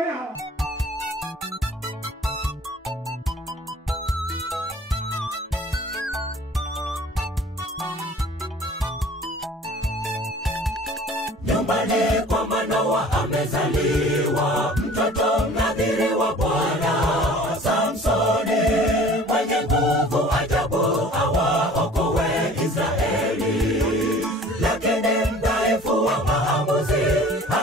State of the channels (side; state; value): both; normal; correlation 0.47